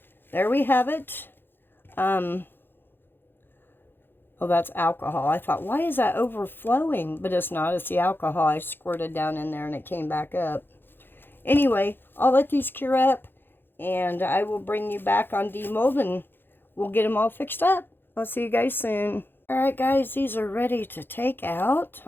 there we have it. Oh, that's alcohol. I thought, why is that overflowing? But it's not. It's the alcohol I squirted down in there and it came back up. Anyway, I'll let these cure up and I will bring you back on demold and we'll get them all fixed up. I'll see you guys soon. Alright guys, these are ready to take out.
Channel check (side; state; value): right; late; 0.10 ms